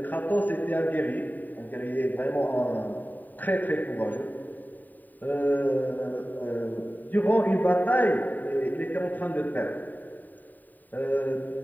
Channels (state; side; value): late; right; 0.086 ms